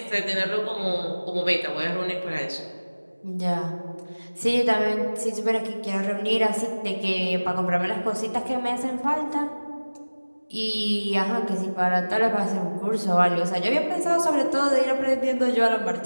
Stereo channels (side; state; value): both; inverted; correlation -1.00